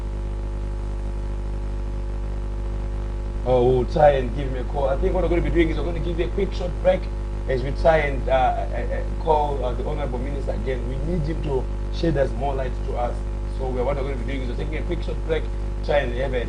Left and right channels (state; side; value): identical; both; correlation 1.00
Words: Oh, we'll try and give him a call. I think what we're going to be doing is we're going to give you a quick short break as we try and call the Honorable Minister again. We need him to shed us more light to us. So what we're going to be doing is we're taking a quick short break, try and have a